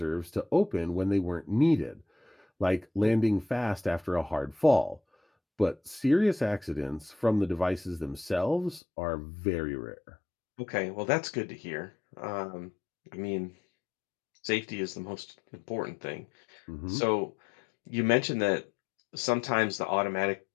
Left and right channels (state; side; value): drops out; right; at 8.8 s